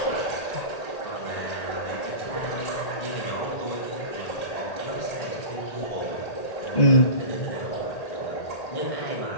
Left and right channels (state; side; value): late; right; 1.8 ms